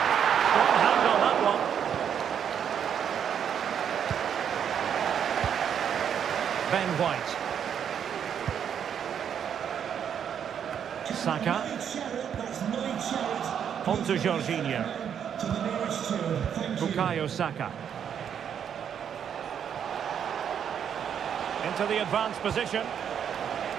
Strong hand on that one. Ben White. Saka. On to Jorginho. Bukayo Saka. Into the advanced position.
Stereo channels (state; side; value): quieter; left; 8.4 dB